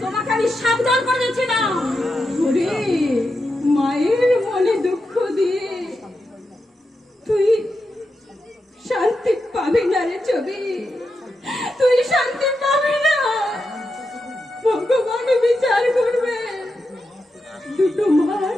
তোমাকে আমি সাবধান করে দিচ্ছি না। ওরে মায়ের মনে দুঃখ দিয়ে তুই শান্তি পাবি না রে ছবি, তুই শান্তি পাবি না। ভগবান বিচার করবে। দুটো মার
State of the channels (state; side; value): normal; both; correlation 0.87